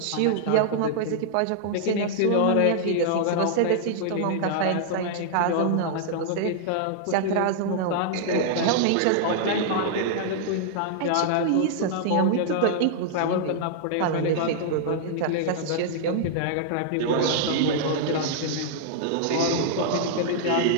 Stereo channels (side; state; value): both; different; correlation -0.01